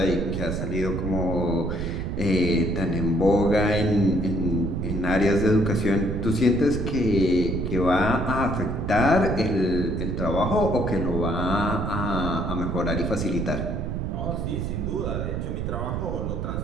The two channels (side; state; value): right; noise; rumble, 3 dB below the sound